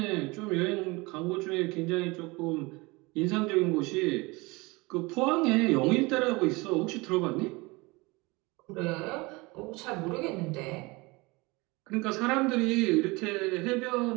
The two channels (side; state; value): left; quieter; 24.5 dB